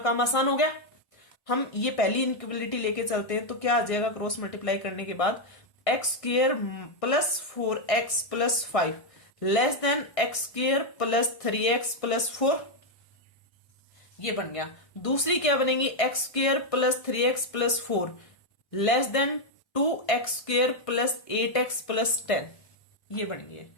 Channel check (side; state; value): right; late; 1.6 ms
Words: आसान हो गया। हम ये पहली इनइक्वालिटी लेके चलते हैं, तो क्या आ जाएगा क्रॉस मल्टीप्लाई करने के बाद, x square plus 4x plus 5 less than x square plus 3x plus 4, ये बन गया। दूसरी क्या बनेगी, x square plus 3x plus 4 less than 2x square plus 8x plus 10, ये बन गई।